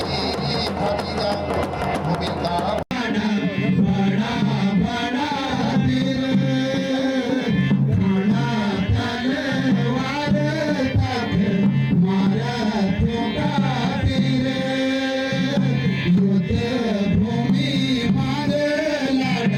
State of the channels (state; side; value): identical; both; correlation 1.00